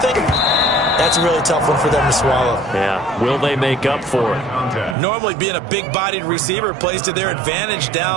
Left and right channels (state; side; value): drops out; left; at 5.0 s